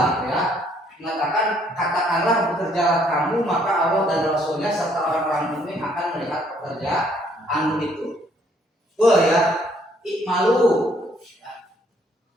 gitu ya. Mengatakan katakanlah bekerjalah kamu maka Allah dan Rasulnya serta orang-orang mukmin akan melihat pekerjaanmu itu. Ya, ikmalu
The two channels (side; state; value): both; normal; correlation 0.65